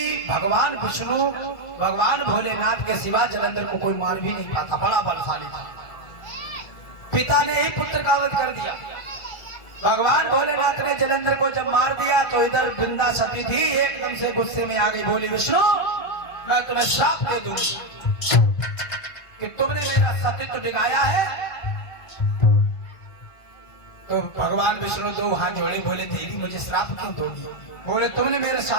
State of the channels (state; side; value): late; right; 1.5 ms